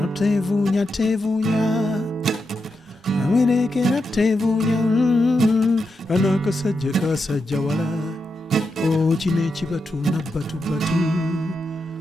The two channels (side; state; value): both; normal; correlation 0.86